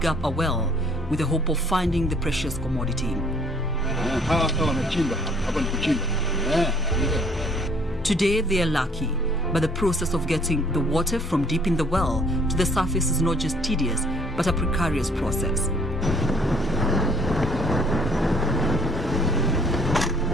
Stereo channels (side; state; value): both; normal; correlation 0.60